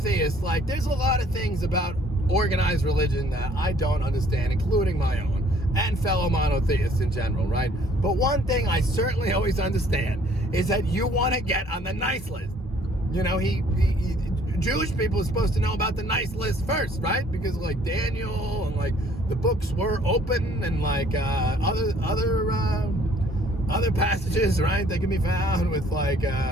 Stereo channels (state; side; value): normal; both; correlation 0.59